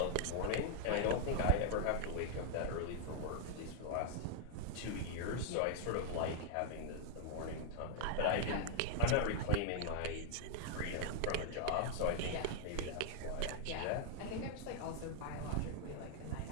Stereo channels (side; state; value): both; different; correlation -0.01